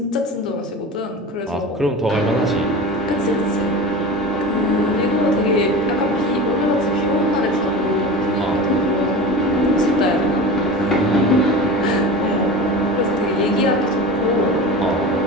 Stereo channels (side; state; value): both; normal; correlation 0.32